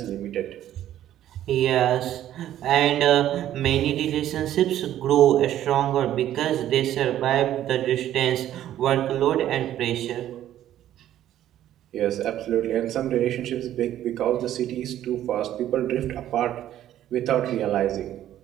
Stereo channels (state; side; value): quieter; left; 12.1 dB